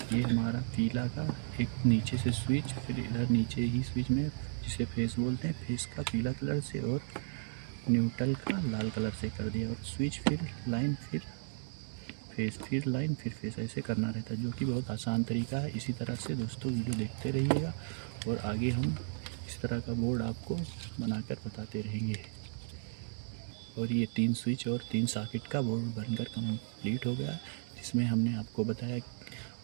ये हमारा पीला का एक नीचे से स्विच, फिर इधर नीचे ही स्विच में, जिसे फेस बोलते हैं, फेस का पीला कलर से और न्यूट्रल का लाल कलर से कर दिया। और स्विच फिर लाइन, फिर फेस, फिर लाइन, फिर फेस, ऐसे करना रहता है, जो कि बहुत आसान तरीका है। इसी तरह से दोस्तों वीडियो देखते रहिएगा और आगे हम इस तरह का बोर्ड आपको बनाकर बताते रहेंगे। और ये 3 स्विच और 3 सॉकेट का बोर्ड बनकर कंप्लीट हो गया, जिसमें हमने आपको बताया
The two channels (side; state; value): left; silent; 55 dB below the other